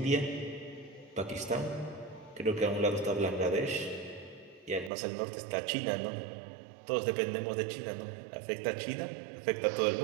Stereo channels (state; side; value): drops out; left; at 4.9 s